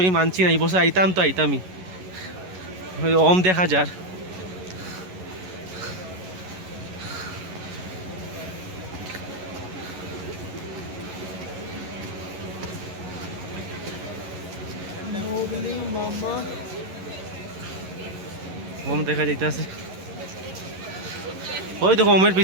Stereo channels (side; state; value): left; late; 11 ms